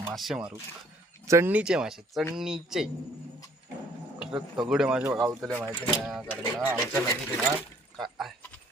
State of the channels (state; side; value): normal; both; correlation 0.60